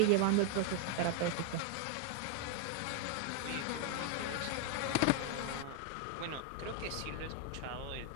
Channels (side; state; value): both; different; correlation 0.01